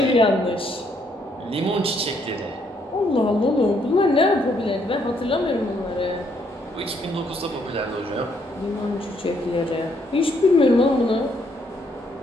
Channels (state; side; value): normal; both; correlation 0.71